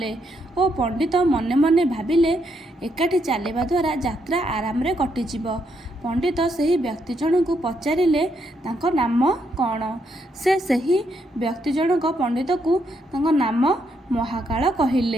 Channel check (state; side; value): normal; both; correlation 0.77